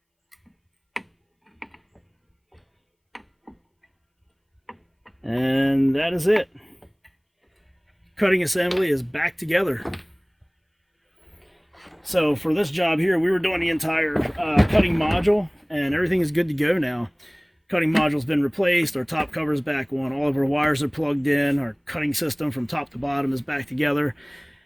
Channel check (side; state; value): both; identical; correlation 1.00